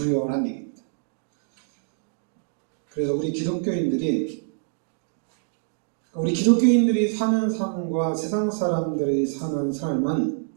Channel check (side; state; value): left; silent; digital silence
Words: 얘기입니다. 그래서 우리 기독교인들이 사는 삶과 세상 사람들이 사는 삶은